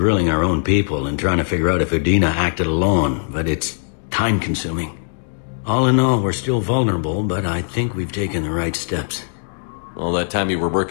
our own people and trying to figure out if Udina acted alone, but it's time-consuming. All in all, we're still vulnerable, but I think we've taken the right steps. All that time you were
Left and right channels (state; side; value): silent; right; 66 dB below the other